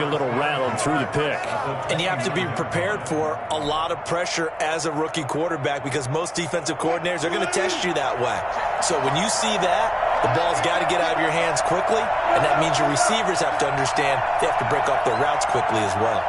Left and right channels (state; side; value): identical; both; correlation 1.00